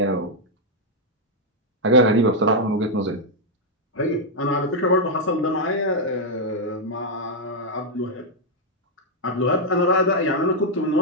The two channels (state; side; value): normal; both; correlation -0.02